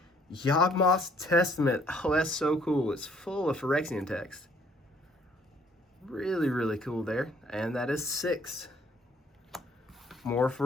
Yawgmoth's Testament. Oh, that's so cool. It's full of Phyrexian text. Really, really cool there. And that is 6. More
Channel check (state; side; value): normal; both; correlation 0.62